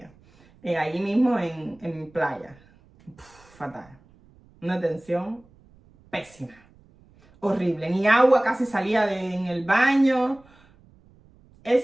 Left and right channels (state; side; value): noise; right; rumble, 29 dB below the sound